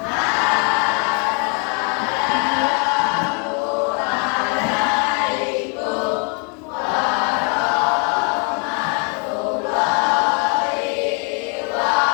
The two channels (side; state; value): right; quieter; 37.2 dB